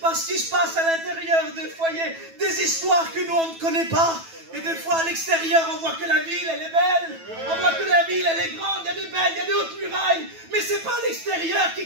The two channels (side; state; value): left; late; 9.1 ms